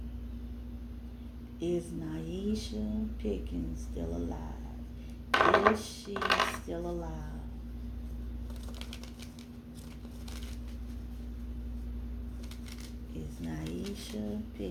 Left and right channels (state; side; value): identical; both; correlation 1.00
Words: Is Nyeasha Pickens still alive? Is she still alive? Is Nyeasha